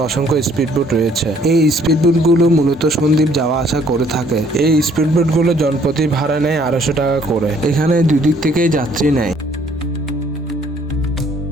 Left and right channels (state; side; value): normal; both; correlation 0.62